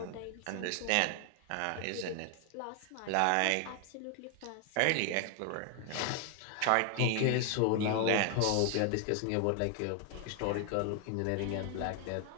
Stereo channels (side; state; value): both; different; correlation 0.00